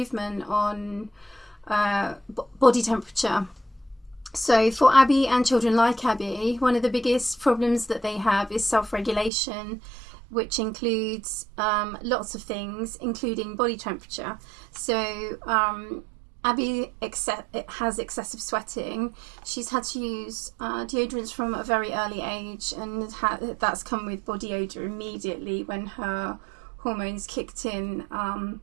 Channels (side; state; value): left; drops out; at 9.3 s